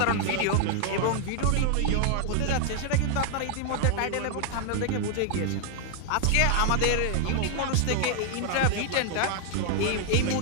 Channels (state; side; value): different; both; correlation 0.00